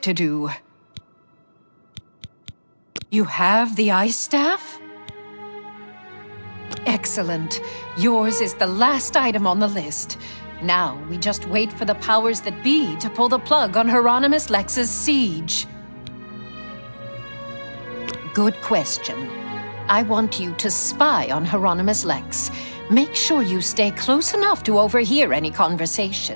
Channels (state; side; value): inverted; both; correlation -1.00